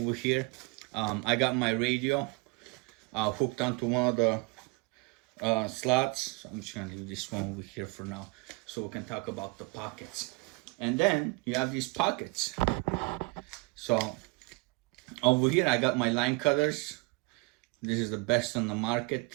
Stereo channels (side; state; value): left; quieter; 27.2 dB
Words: here. I got my radio hooked onto one of the slots. So I'm just gonna leave this one over here for now, so we can talk about the pockets. And then you have these pockets. So over here I got my line cutters. This is the best on the